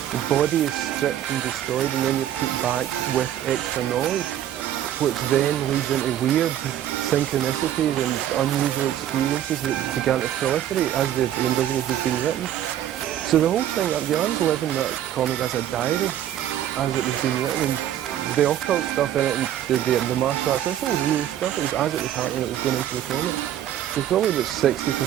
The body is stripped and destroyed, and then you're put back with extra knowledge, which then leads into weird synchronicities and unusual experiences that began to proliferate as the Invisibles was being written. So the whole thing, Bjorn's living that comic as a diary, as it was being written, and the occult stuff in it, and the martial arts, this all real stuff. It was as it was happening, it was going into the comic. So probably about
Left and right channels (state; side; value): quieter; left; 11.4 dB